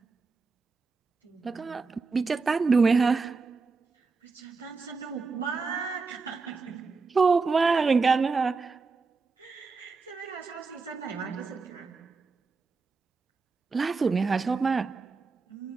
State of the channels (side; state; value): left; quieter; 4.4 dB